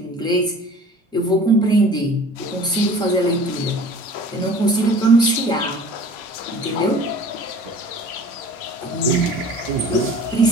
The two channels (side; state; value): both; normal; correlation 0.45